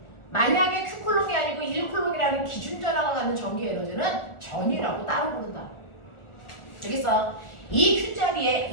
만약에 Q쿨롱이 아니고 1쿨롱이라는 기준 전화가 갖는 전기 에너지는 전이라고 따로 부른다. 알겠어? 이 Q자리에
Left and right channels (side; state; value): right; late; 1.4 ms